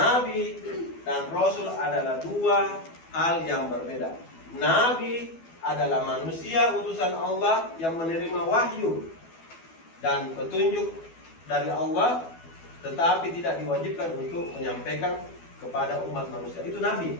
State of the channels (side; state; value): right; late; 12 ms